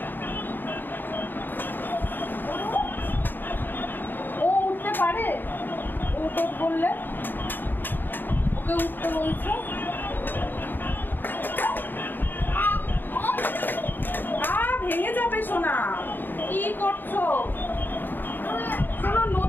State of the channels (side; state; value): right; late; 0.092 ms